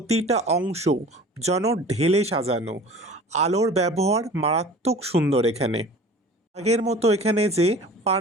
অংশ যেন ঢেলে সাজানো, আলোর ব্যবহার মারাত্মক সুন্দর এখানে। আগের মতো এখানে যে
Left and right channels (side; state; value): both; normal; correlation 0.42